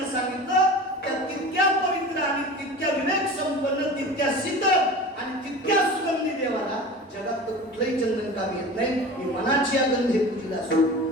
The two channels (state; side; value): normal; both; correlation 0.35